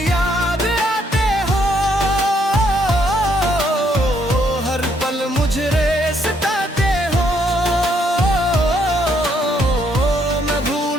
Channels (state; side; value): normal; both; correlation 0.71